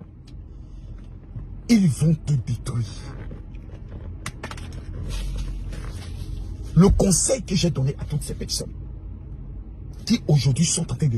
Ils vont te détruire. Le conseil que j'ai donné à toutes ces personnes qui aujourd'hui sont en train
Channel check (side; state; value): both; identical; correlation 1.00